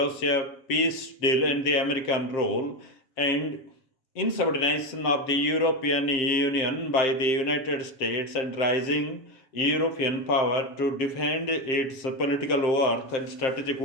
peace deal and the American role and insubordination of the European Union by the United States and rising European power to defend its political worth and strategic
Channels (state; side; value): late; right; 7.6 ms